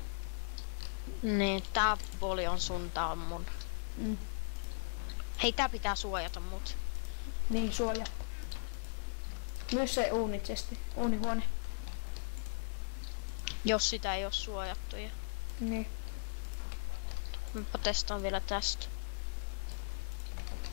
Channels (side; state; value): right; silent; digital silence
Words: Niin, tää puoli on sun, tää on mun. Hei, tää pitää suojata mut. Niin, suojaa. Myös se uunichesti, uunihuone. Jos sitä ei oo suojattu. Ja Niin. mä testaan vielä tästä.